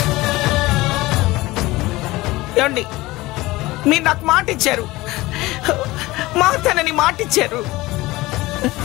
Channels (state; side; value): quieter; right; 19.7 dB